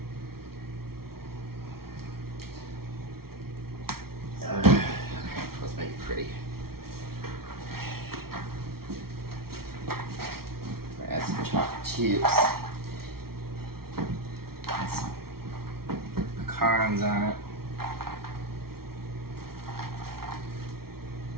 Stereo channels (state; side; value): late; left; 0.94 ms